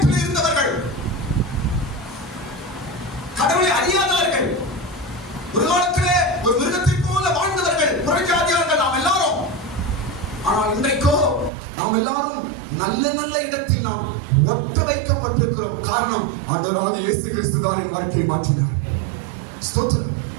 அறியாதவர்கள், ஒரு காலத்திலே ஒரு மிருகத்தை போல வாழ்ந்தவர்கள், புறஜாதியார்கள் நாம் எல்லாரும். ஆனால் இன்றைக்கோ நாம் எல்லாரும் நல்ல நல்ல இடத்தில் நாம் ஒட்ட வைக்கப்பட்டிருக்கிறோம். காரணம், ஆண்டவராகிய இயேசு கிறிஸ்து தான் என் வாழ்க்கையை மாற்றினார். ஸ்தோத்திரம்.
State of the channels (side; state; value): left; drops out; at 11.5 s